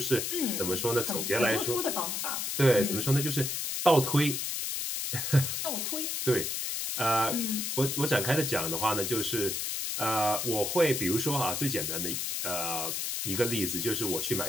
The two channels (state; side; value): noise; left; hiss, 2 dB below the sound